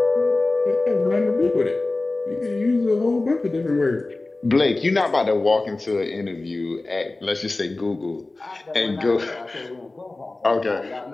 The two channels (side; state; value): right; quieter; 3.1 dB